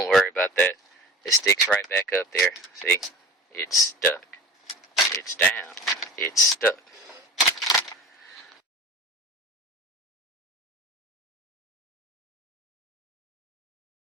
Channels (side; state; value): both; normal; correlation 0.38